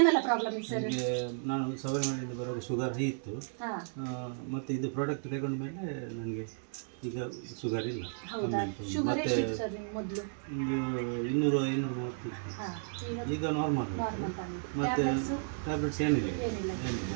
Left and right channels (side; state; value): left; silent; digital silence